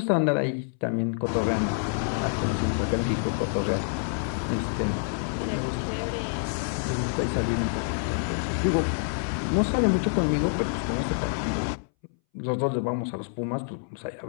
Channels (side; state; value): right; silent; 60 dB below the other